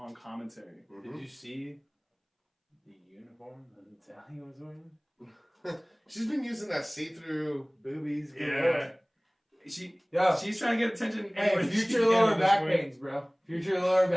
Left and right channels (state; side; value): identical; both; correlation 1.00